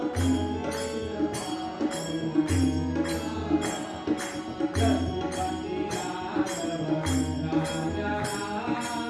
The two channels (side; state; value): both; identical; correlation 1.00